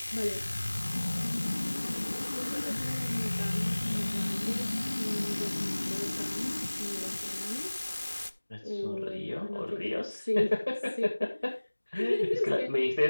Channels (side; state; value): both; inverted; correlation -1.00